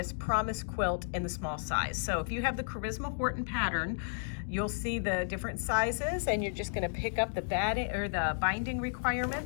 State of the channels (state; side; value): silent; right; digital silence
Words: Promise quilt in the small size. So if you have the Charisma Horton pattern, you'll see the different sizes, and you're just gonna pick up the batting or the binding